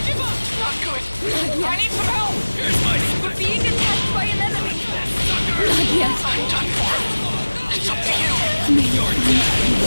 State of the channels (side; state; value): both; inverted; correlation -1.00